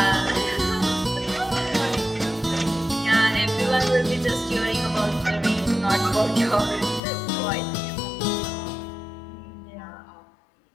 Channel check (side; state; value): right; drops out; at 7.0 s